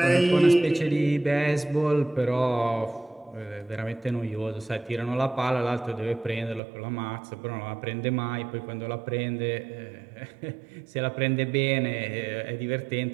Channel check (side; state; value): left; drops out; at 6.6 s